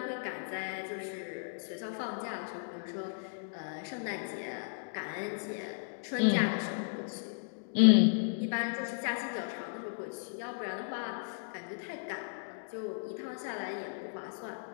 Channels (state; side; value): silent; right; digital silence